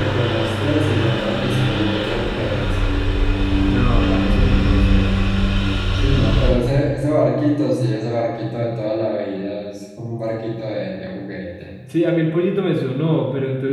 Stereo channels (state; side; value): identical; both; correlation 1.00